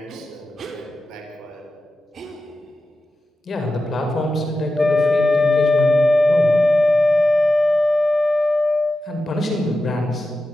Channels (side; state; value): both; normal; correlation 0.92